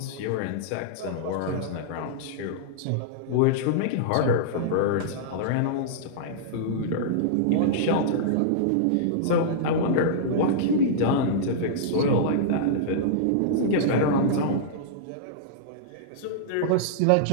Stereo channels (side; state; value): both; different; correlation -0.02